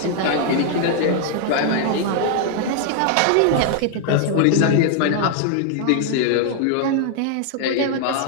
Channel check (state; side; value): different; both; correlation 0.00